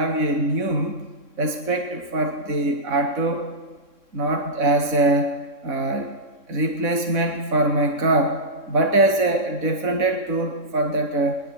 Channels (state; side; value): late; left; 3.6 ms